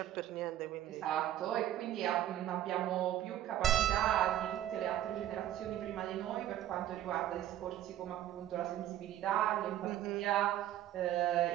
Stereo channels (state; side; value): quieter; left; 12.4 dB